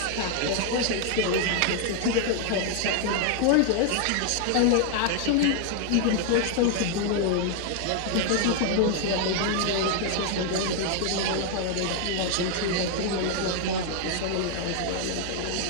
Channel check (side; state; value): both; different; correlation 0.00